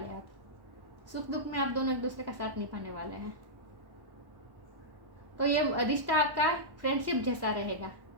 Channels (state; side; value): late; left; 1.1 ms